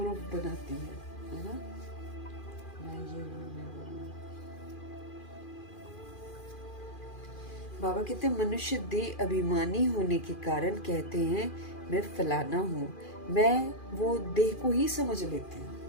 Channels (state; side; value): late; right; 2.4 ms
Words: बनाती है ना, मैं ये हूँ मैं वो हूँ। बाबा कहते हैं मनुष्य देह अभिमानी होने के कारण कहते हैं मैं फलाना हूँ, मैं वो देह को ही समझ लेती हूँ।